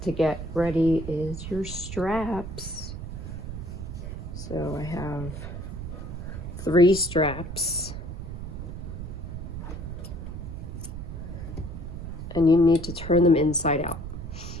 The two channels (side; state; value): right; noise; rumble, 7 dB below the sound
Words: to get ready is your straps. So I have 3 straps. And you need to turn them inside out.